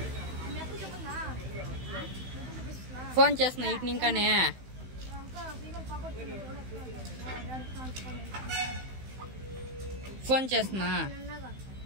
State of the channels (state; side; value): late; left; 16 ms